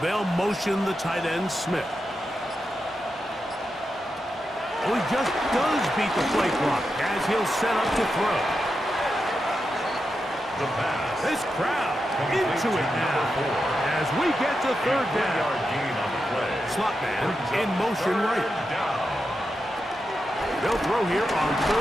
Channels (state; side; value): normal; both; correlation 0.88